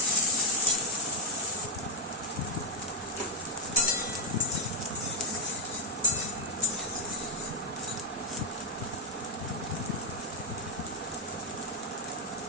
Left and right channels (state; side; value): normal; both; correlation 0.00